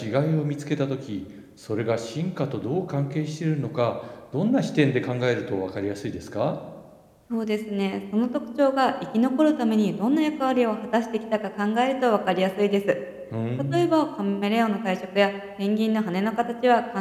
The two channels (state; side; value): identical; both; correlation 1.00